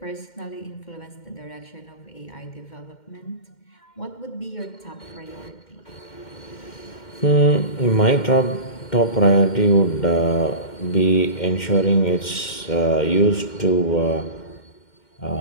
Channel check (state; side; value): late; right; 2.1 ms